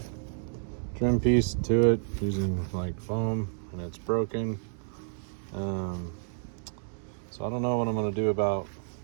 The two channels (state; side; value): silent; left; digital silence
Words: trim piece to it using like foam, and it's broken. So I don't know what I'm gonna do about